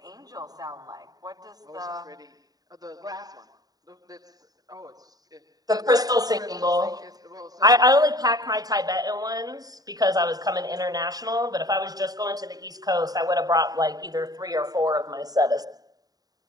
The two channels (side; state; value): left; late; 0.18 ms